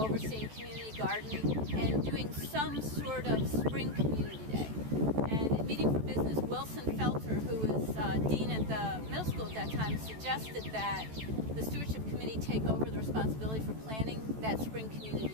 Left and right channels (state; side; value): late; left; 14 ms